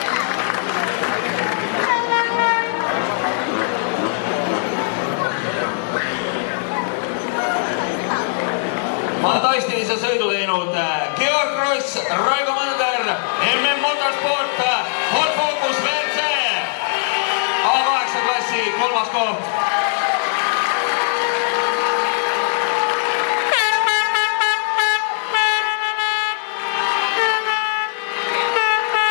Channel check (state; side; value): silent; right; digital silence